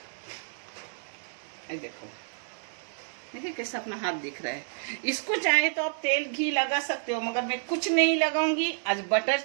देखो, देखिए कैसा अपना हाथ दिख रहा है। इसको चाहे तो आप तेल घी लगा सकते हो, मगर मैं कुछ नहीं लगाऊंगी। आज बटर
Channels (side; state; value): left; silent; digital silence